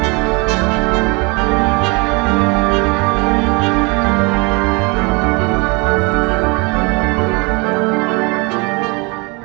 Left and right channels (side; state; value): left; quieter; 29.4 dB